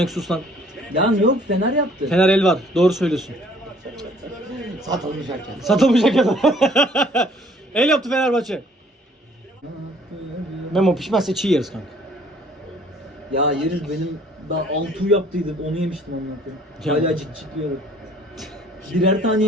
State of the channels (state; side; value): normal; both; correlation 0.58